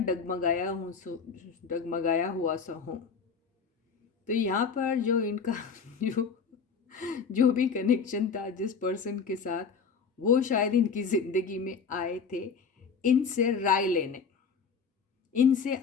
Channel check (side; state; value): right; quieter; 5.7 dB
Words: हुआ सा हूँ। तो यहाँ पर जो इनका जो भी कनेक्शन था जिस पर्सन के साथ, वो शायद इनकी ज़िंदगी में आए थे इनसे राय लेने, इनसे